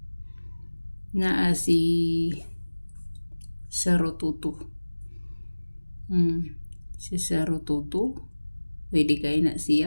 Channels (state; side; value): inverted; both; correlation -1.00